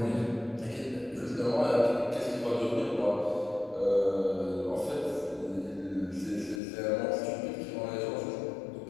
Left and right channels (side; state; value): right; drops out; at 6.6 s